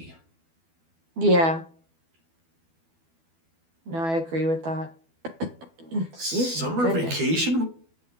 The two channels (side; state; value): left; late; 12 ms